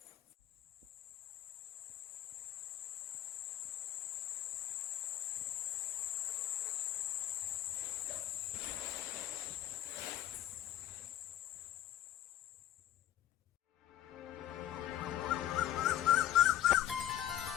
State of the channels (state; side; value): quieter; right; 12.3 dB